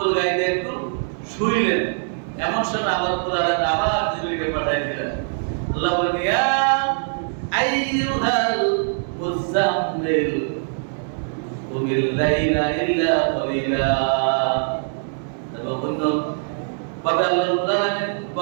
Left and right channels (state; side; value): silent; left; digital silence